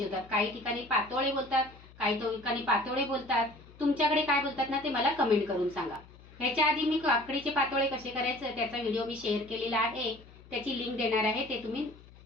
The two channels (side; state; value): left; noise; hum, 22 dB below the sound